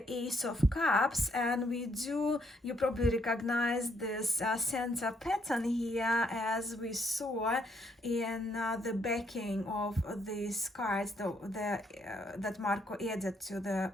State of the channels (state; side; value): normal; both; correlation 0.72